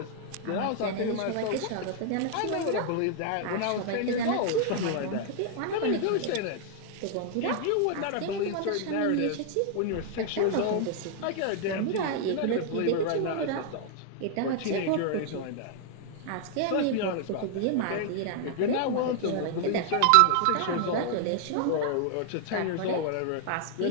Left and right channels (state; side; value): different; both; correlation 0.00